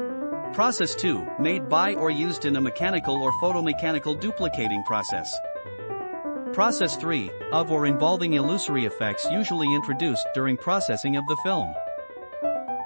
Process 2, made by or used in a mechanical or photomechanical duplicating process. Process 3, of or involving illusory effects usually introduced during processing of the film.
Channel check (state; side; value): inverted; both; correlation -1.00